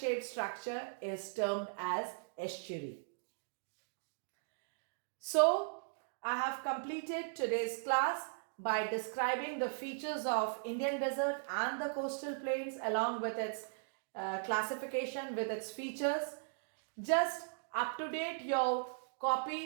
structure is termed as estuary. So I have completed today's class by describing the features of Indian desert and the coastal plains along with its classification, with its features. Just up to date your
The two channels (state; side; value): silent; left; digital silence